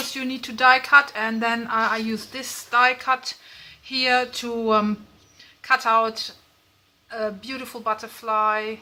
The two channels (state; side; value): identical; both; correlation 1.00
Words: you need to die cut, and then I use this die cut here to cut out a beautiful butterfly